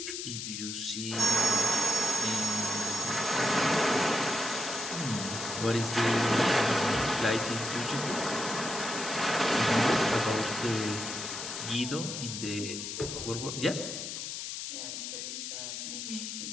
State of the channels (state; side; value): noise; left; hiss, 6 dB below the sound